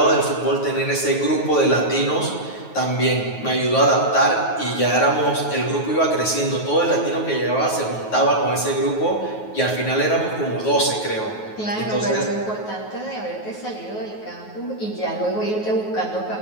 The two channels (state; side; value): late; right; 9.4 ms